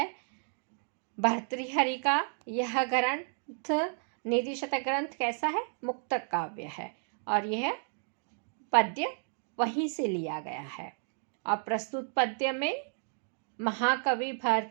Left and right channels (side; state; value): left; silent; 56 dB below the other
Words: भर्तृहरि का यह ग्रंथ नीति शतक ग्रंथ कैसा है? मुक्तक काव्य है और यह पद्य वहीं से लिया गया है। और प्रस्तुत पद्य में महाकवि